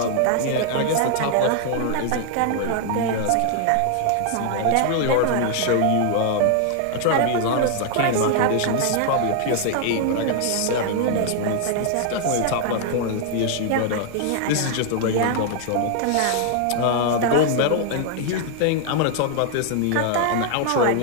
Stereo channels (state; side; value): different; both; correlation 0.00